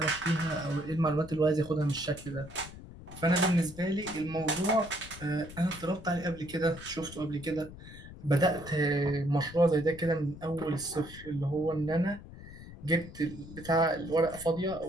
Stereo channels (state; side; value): noise; left; rumble, 15 dB below the sound